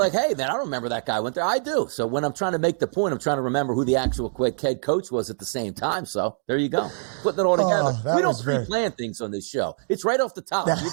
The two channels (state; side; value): silent; left; digital silence